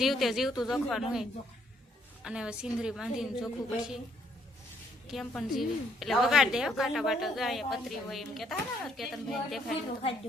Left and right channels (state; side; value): normal; both; correlation 0.69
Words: જીવતું જોખવાનું હોય. અને હવે સિંદરી બાંધીને જોખવું પછી કેમ પણ જીવી. એટલે વગાડ દે કાંટા બાટા જાય પતરી હોય એમ કેતા ને કેતનભાઈ દેખાય.